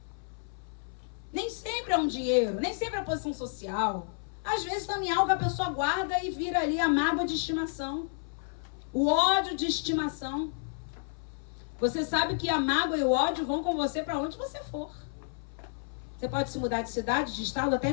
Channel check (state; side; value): silent; right; 57 dB below the other